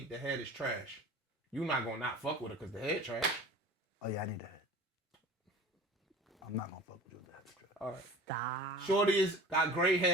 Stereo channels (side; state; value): both; normal; correlation 0.40